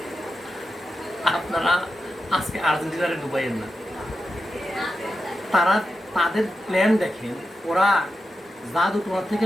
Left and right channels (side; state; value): both; normal; correlation 0.90